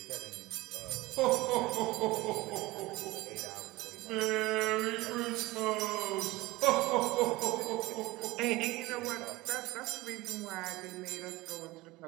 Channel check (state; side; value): quieter; left; 20.2 dB